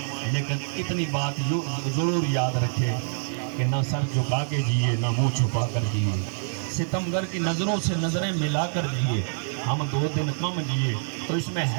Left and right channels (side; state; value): left; silent; digital silence